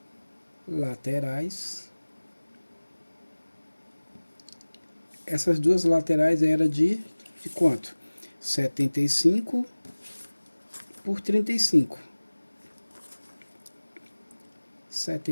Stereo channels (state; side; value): inverted; both; correlation -1.00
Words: laterais. Essas duas laterais eram de quanto? 75 por 35.